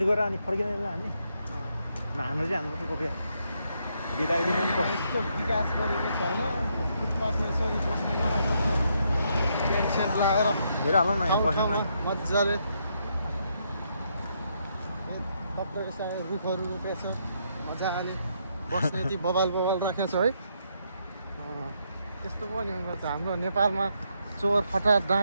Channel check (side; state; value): both; inverted; correlation -0.76